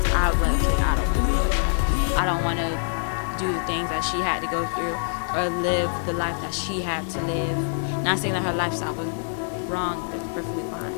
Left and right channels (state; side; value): silent; right; digital silence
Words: I would be like, okay, I don't want to do it like that. I don't want to do the things that she had to go through or live the life that she had to live. Not saying that her lifestyle was wrong, that was perfectly fine,